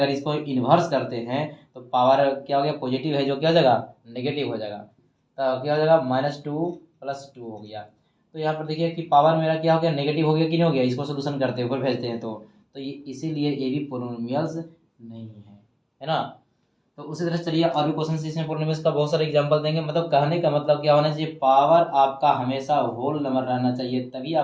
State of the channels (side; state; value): both; identical; correlation 1.00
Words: इसको इन्वर्स करते हैं तो पावर क्या हो गया, पॉजिटिव है जो क्या हो जाएगा, नेगेटिव हो जाएगा, तो क्या हो जाएगा -2 + 2 हो गया। तो यहाँ पर देखिए कि पावर मेरा क्या हो गया, नेगेटिव हो गया कि नहीं हो गया, इसको सोल्यूशन करते हैं ऊपर भेजते हैं तो ये इसीलिए ये भी पोलिनोमियल्स नहीं है ना। तो उसी तरह चलिए और भी क्वेश्चन इसमें पोलिनोमियल्स का बहुत सारे एग्जांपल देंगे। मतलब कहने का मतलब क्या होना चाहिए, पावर आपका हमेशा होल नंबर रहना चाहिए, तभी